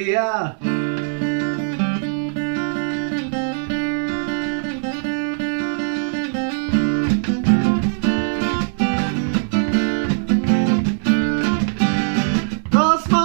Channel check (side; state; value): left; silent; digital silence